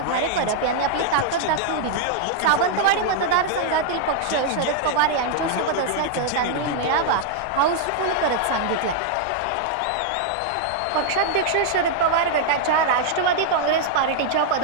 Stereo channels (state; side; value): different; both; correlation -0.01